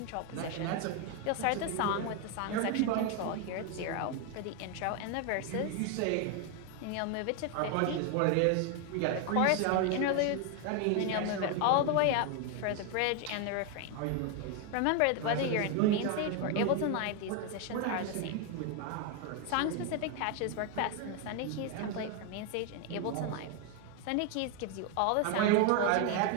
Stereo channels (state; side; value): different; both; correlation 0.01